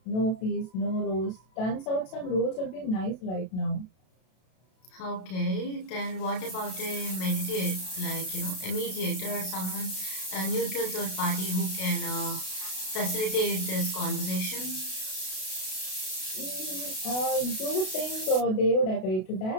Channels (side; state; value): right; late; 32 ms